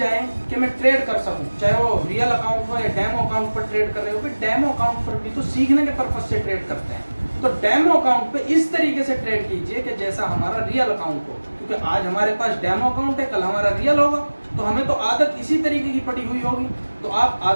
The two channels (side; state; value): both; inverted; correlation -1.00